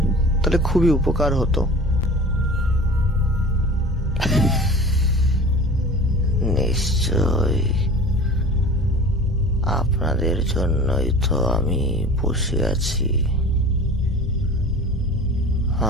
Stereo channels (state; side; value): normal; both; correlation 0.39